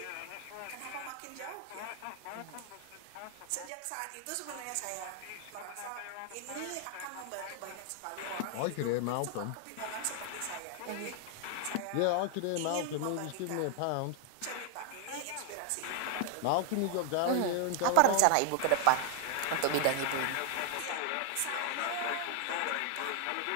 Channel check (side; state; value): both; different; correlation 0.00